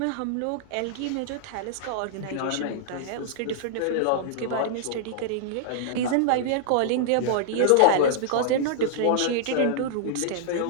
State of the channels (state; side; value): different; both; correlation -0.01